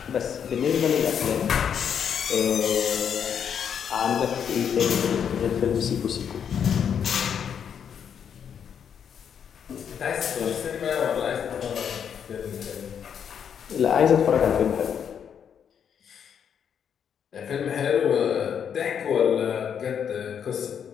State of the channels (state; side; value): quieter; right; 8.0 dB